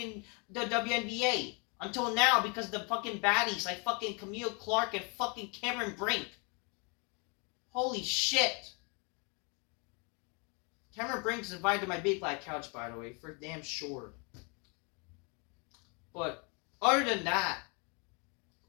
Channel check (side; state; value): right; quieter; 33.7 dB